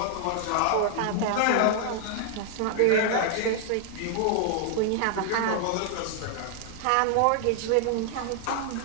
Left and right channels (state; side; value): different; both; correlation 0.00